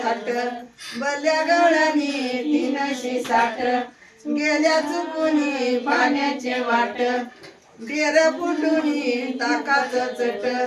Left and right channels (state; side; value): identical; both; correlation 1.00